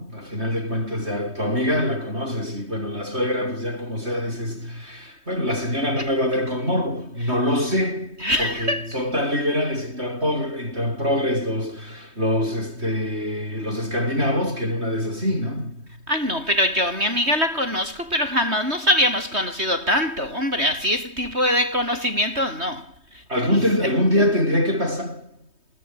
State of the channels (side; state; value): left; late; 3.2 ms